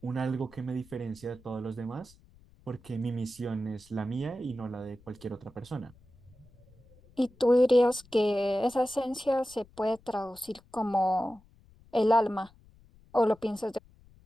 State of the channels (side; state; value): left; noise; rumble, 27 dB below the sound